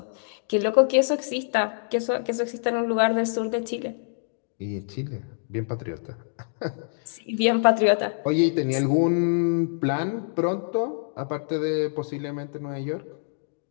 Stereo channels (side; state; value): right; silent; digital silence